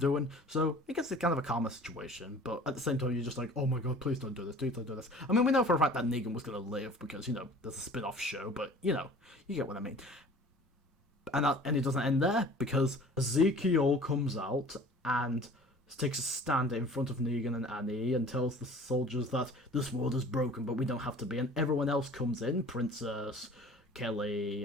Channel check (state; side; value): normal; both; correlation 0.46